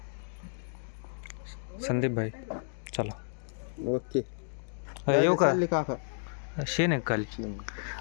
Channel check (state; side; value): silent; right; digital silence